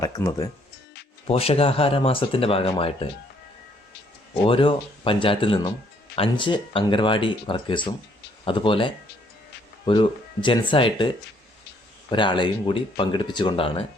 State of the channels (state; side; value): normal; both; correlation 0.66